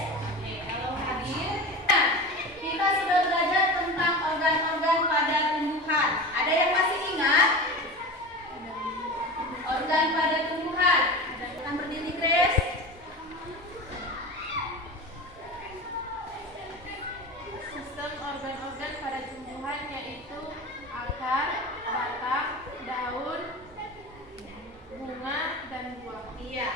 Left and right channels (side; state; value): both; normal; correlation 0.30